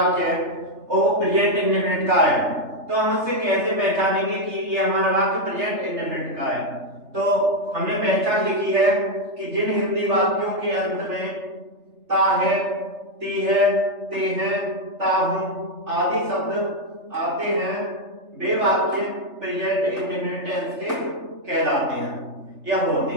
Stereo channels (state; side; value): late; left; 3.3 ms